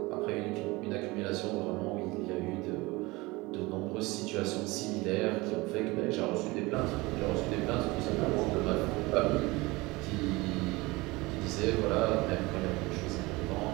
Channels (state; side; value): quieter; left; 22.6 dB